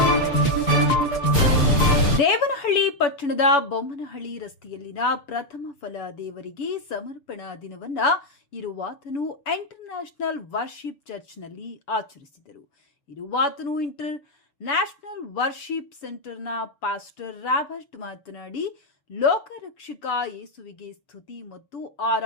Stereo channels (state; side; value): late; right; 7.0 ms